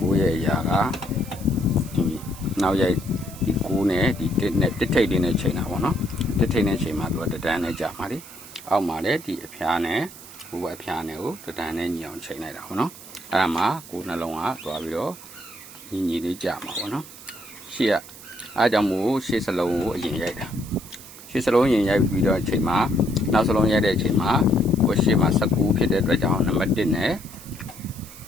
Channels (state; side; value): noise; right; hiss, 17 dB below the sound